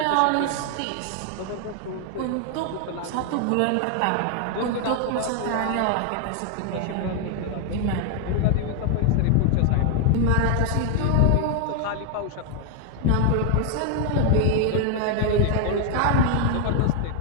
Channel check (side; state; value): both; different; correlation 0.00